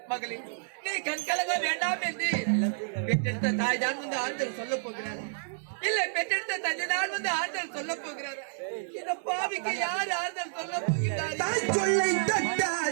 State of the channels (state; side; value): silent; left; digital silence